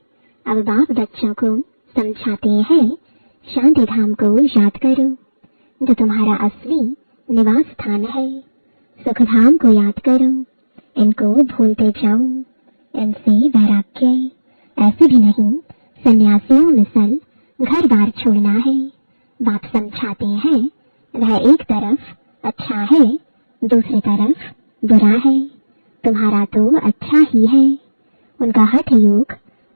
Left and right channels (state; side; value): inverted; both; correlation -1.00